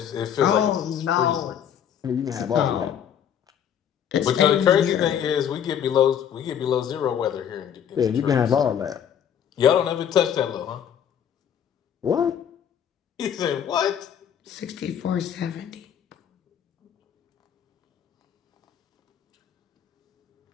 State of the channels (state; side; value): quieter; right; 8.9 dB